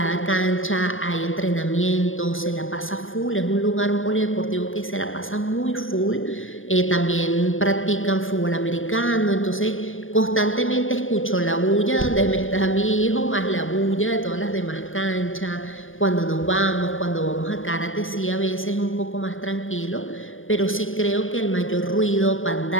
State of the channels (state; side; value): late; right; 0.59 ms